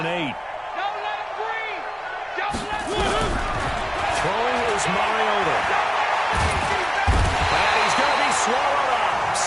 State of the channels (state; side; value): identical; both; correlation 1.00